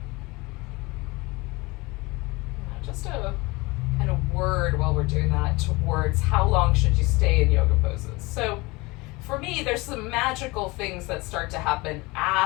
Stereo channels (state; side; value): quieter; right; 23.6 dB